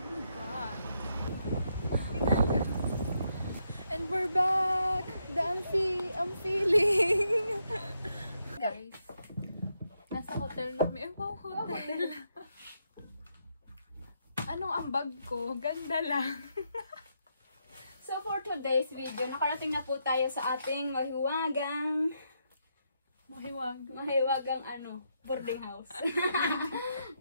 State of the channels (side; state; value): both; inverted; correlation -0.79